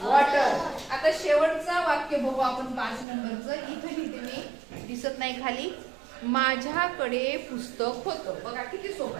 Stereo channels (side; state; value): left; drops out; at 3.1 s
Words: वॉटर आता शेवटचं वाक्य बघू आपण 5 नंबरचं इथे लिहिते मी दिसत नाही खाली माझ्याकडे पुस्तक होतं बघा किती सोपं